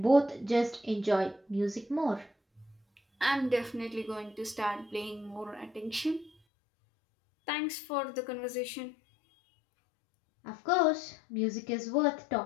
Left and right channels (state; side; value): drops out; right; at 6.3 s